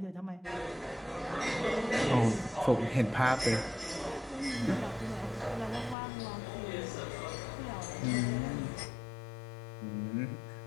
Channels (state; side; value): drops out; right; at 6.0 s